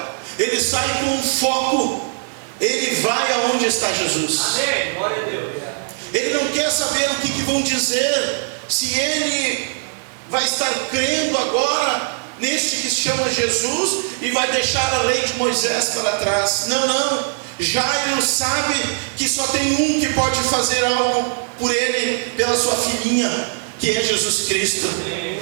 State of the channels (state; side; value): silent; left; digital silence